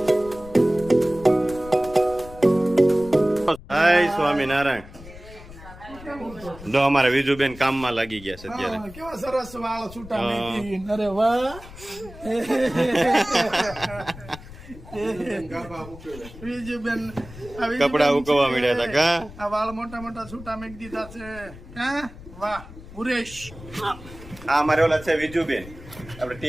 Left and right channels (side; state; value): left; noise; rumble, 17 dB below the sound